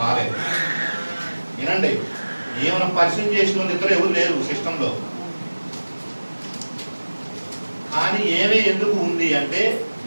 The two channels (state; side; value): inverted; both; correlation -1.00